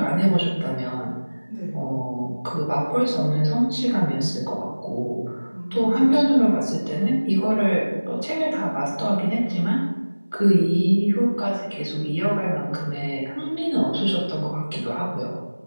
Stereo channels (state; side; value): inverted; both; correlation -1.00